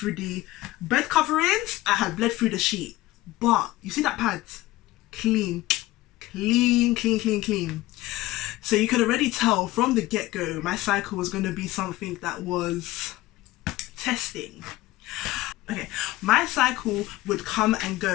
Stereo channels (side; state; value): right; quieter; 17.5 dB